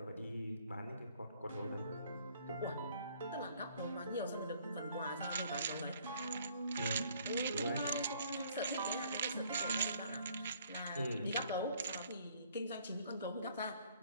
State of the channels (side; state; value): both; inverted; correlation -0.61